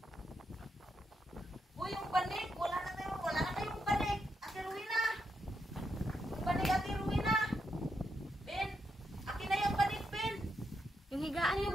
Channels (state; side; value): normal; both; correlation 0.82